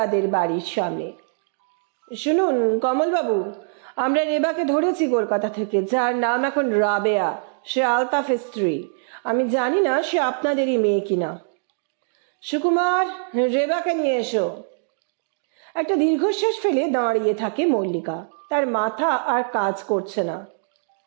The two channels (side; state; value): left; silent; digital silence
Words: বাড়ির সামনে। শুনুন কমলবাবু, আমরা রেবাকে ধরেছি কলকাতা থেকে, যার নাম এখন রাবেয়া। সে আলতাফের স্ত্রী। আমি জানি না সে আপনাদেরই মেয়ে কিনা। সুকুমার, রেবাকে নিয়ে এসো। একটা দীর্ঘশ্বাস ফেলে দাঁড়িয়ে থাকে মল্লিকা। তার মাথা আর কাজ করছে না।